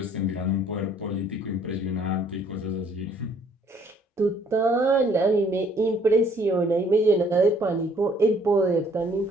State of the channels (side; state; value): both; normal; correlation 0.61